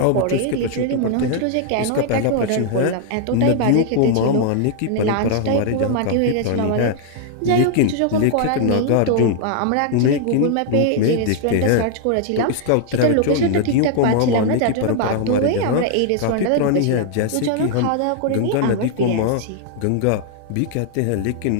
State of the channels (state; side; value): different; both; correlation 0.00